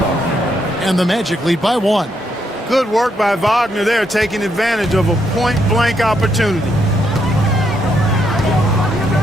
And the Magic lead by 1. Good work by Wagner there, taking advantage of a point-blank opportunity.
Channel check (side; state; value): both; normal; correlation 0.77